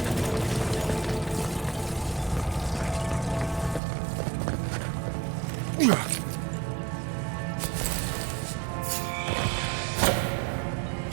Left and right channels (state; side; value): drops out; left; at 3.8 s